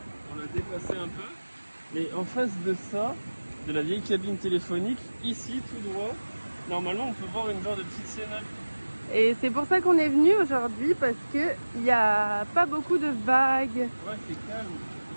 on l'a déplacé un peu, mais en face de ça, de la vieille cabine téléphonique, ici tout droit, normalement on peut voir une genre de petite cénacle. Et c'est pour ça qu'on est venu aujourd'hui parce que il n'y a pas beaucoup de vagues. Ouais, c'est calme.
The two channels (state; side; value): inverted; both; correlation -1.00